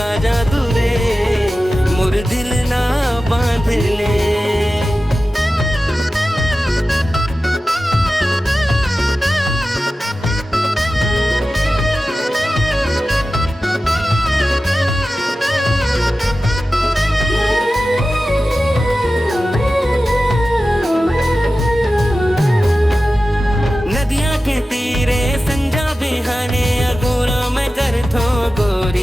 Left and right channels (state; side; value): normal; both; correlation 0.94